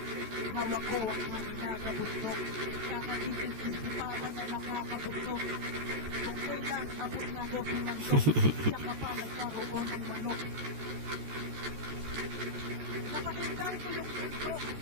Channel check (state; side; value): late; left; 14 ms